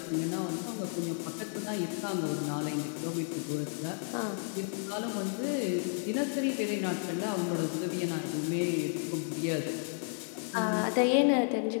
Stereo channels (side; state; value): right; silent; 56 dB below the other